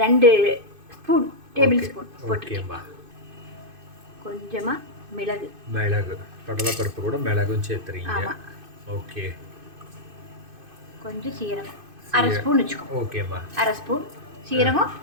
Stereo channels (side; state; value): left; late; 2.5 ms